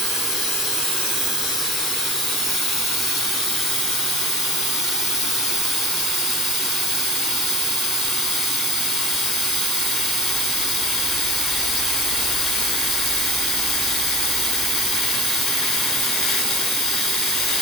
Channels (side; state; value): both; normal; correlation 0.32